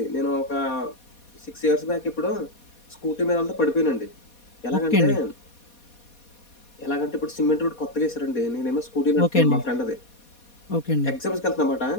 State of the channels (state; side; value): late; right; 4.2 ms